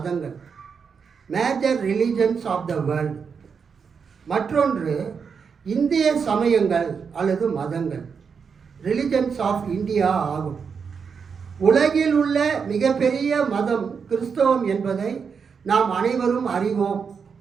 major religions of the world. மற்றொன்று இந்திய சமயங்கள் அல்லது மதங்கள், ரிலிஜன்ஸ் ஆஃப் இந்தியா ஆகும். உலகில் உள்ள மிகப்பெரிய மதம் கிறிஸ்தவம் என்பதை நாம் அனைவரும் அறிவோம்.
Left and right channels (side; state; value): left; quieter; 6.1 dB